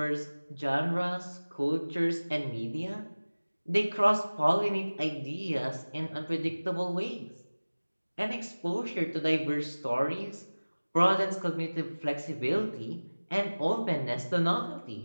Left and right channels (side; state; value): both; inverted; correlation -1.00